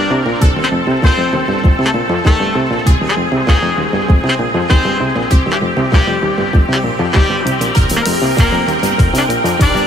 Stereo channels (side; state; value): both; normal; correlation 0.74